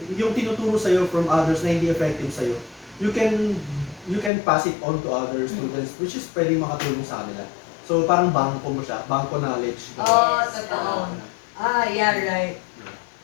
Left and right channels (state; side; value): drops out; right; at 4.3 s